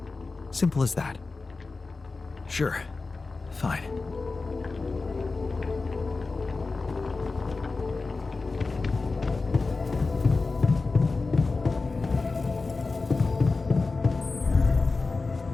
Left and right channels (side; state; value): right; quieter; 3.8 dB